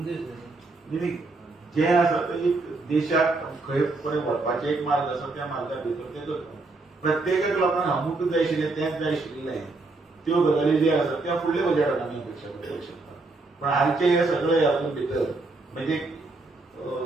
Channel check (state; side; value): quieter; left; 3.4 dB